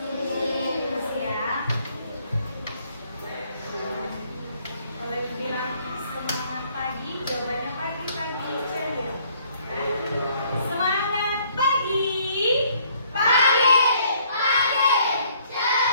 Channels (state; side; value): inverted; both; correlation -0.63